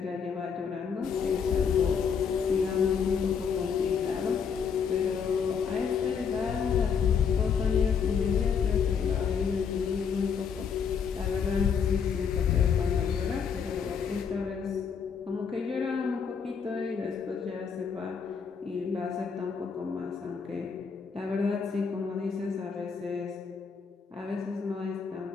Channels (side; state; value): right; quieter; 6.5 dB